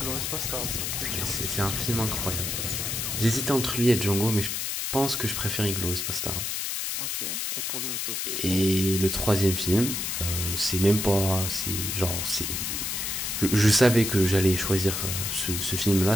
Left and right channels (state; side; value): noise; left; hiss, 2 dB below the sound